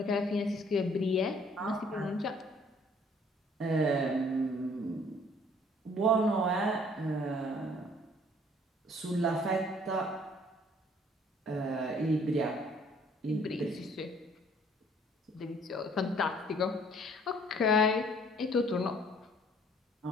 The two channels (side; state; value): both; normal; correlation 0.59